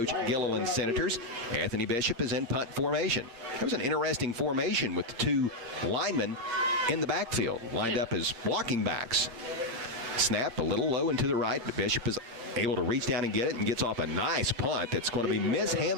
Gilliland's Senators. Anthony Bishop is in punt formation. It was an interesting formation with the 2 linemen in the backfield, lined up as blocking backs. Snap a little low and to the right, but Bishop is able to reach down and get it, and gets off a nice punt that's going to be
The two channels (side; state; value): left; late; 8.6 ms